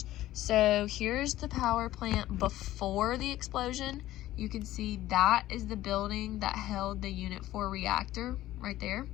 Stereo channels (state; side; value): quieter; right; 14.9 dB